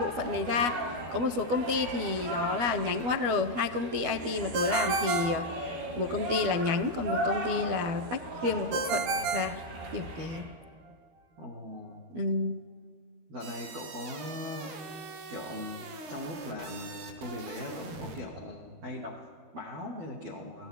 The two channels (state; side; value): late; left; 12 ms